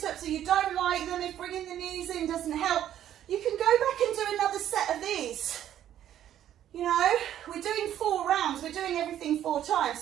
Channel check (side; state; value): left; quieter; 11.2 dB